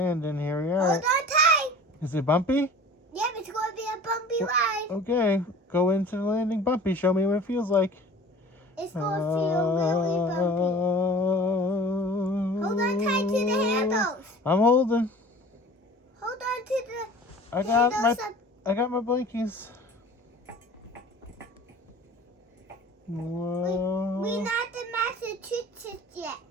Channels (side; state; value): both; normal; correlation 0.43